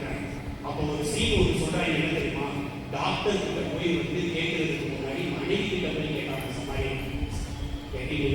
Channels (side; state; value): both; identical; correlation 1.00